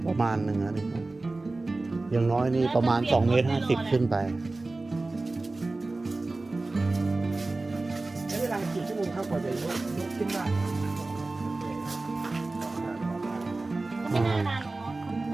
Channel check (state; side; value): quieter; left; 3.2 dB